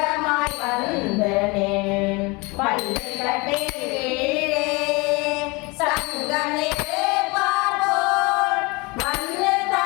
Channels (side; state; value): right; quieter; 26.5 dB